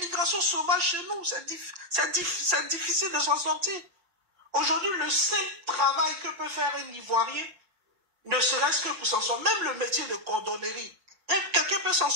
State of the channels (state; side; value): late; left; 6.0 ms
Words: sauvage chez nous. C'est difficile de s'en sortir. Aujourd'hui, le seul travail que peut faire un Ivoirien, ne serait-ce que pour s'en sortir, même le métier de cordonnerie, quelqu'un peut s'en